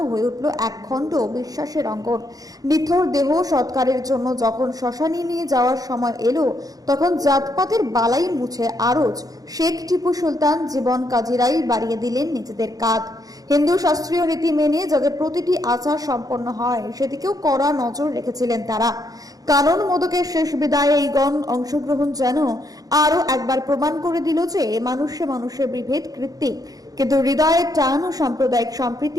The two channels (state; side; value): late; left; 0.18 ms